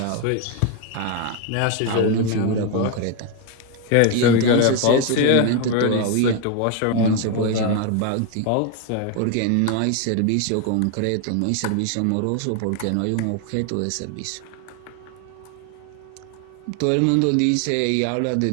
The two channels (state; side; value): different; both; correlation 0.01